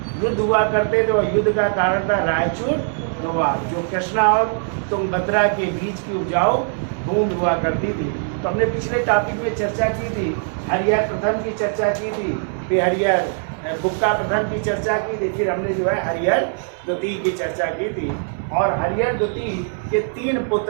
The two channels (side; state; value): left; silent; 65 dB below the other